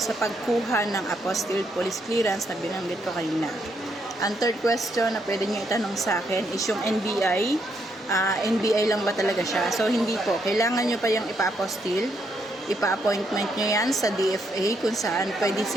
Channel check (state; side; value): normal; both; correlation 0.76